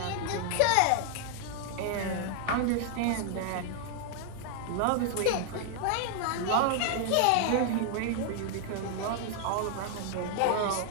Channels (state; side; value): different; both; correlation 0.00